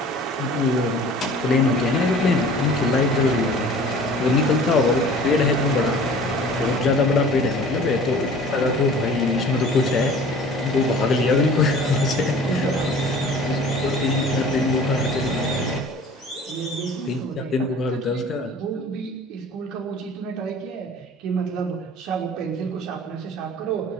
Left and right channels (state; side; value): normal; both; correlation 0.46